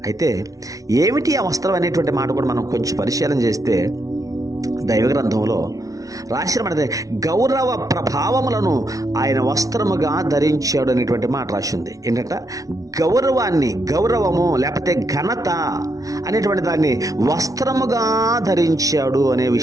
అయితే ఏమిటి ఆ వస్త్రం అనేటువంటి మాట కూడా మనం కొంచెం పరిశీలన చేస్తే దైవ గ్రంథంలో రాసిన మాట, గౌరవ ప్రభావములను ఆయన వస్త్రముగా ధరించాడు అనేటువంటి మాట రాసింది. ఏంటంట? గౌరవము లేకపోతే ఘనత అనేటువంటి దాన్ని వస్త్రముగా ధరించాడు అనే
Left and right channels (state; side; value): late; left; 0.17 ms